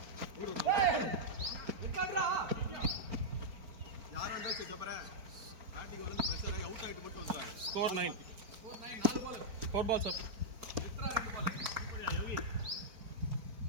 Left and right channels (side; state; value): left; late; 4.4 ms